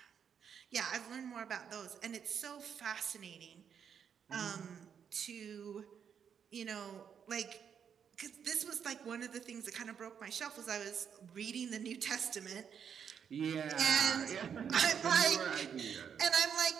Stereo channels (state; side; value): quieter; left; 7.6 dB